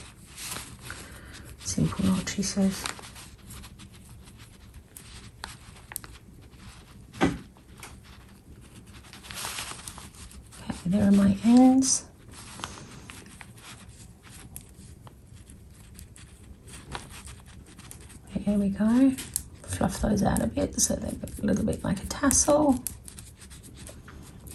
Simple knot, she says. Okay, there are my ends. There we go. Fluff those out a bit so they look a little bit like a tassel.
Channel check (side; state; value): both; identical; correlation 1.00